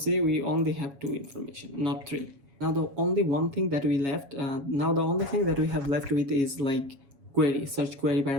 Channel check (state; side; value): late; left; 7.2 ms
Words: we only have 2 information, not 3. Now the only one thing that we left, now the only thing that we have left with is like query, search query